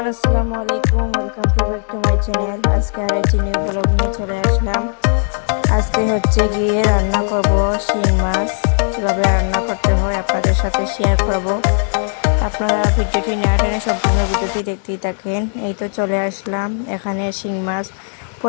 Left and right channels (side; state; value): right; silent; 55 dB below the other